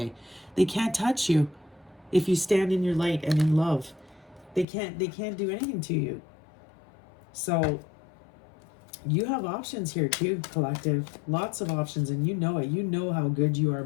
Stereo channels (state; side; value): drops out; right; at 4.7 s